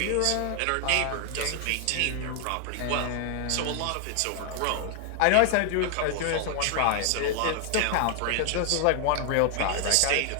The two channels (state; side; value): different; both; correlation 0.00